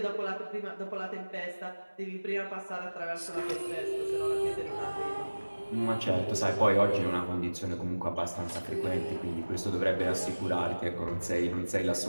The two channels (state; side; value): inverted; both; correlation -1.00